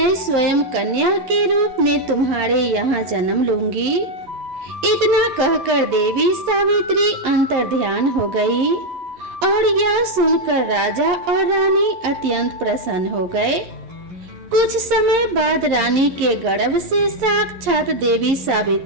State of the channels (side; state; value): left; late; 11 ms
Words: स्वयं कन्या के रूप में तुम्हारे यहाँ जन्म लूंगी। इतना कहकर देवी सावित्री अंतर्ध्यान हो गई और यह सुनकर राजा और रानी अत्यंत प्रसन्न हो गए। कुछ समय बाद रानी के गर्भ से साक्षात देवी